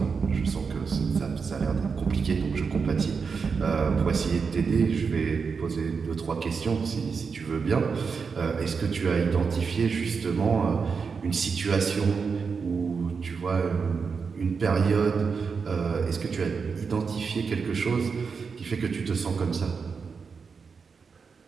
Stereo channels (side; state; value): left; quieter; 5.4 dB